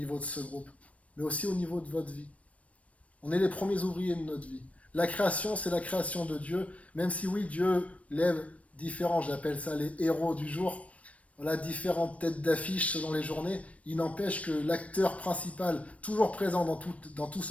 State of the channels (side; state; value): right; late; 0.065 ms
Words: de ce groupe, mais aussi au niveau de votre vie. On est les premiers ouvriers de notre vie. La création, c'est la création de Dieu, même si oui, Dieu lève différents, j'appelle ça les héros du jour, voilà, différentes têtes d'affiche selon les journées, il n'empêche que l'acteur principal, toujours présent dans tout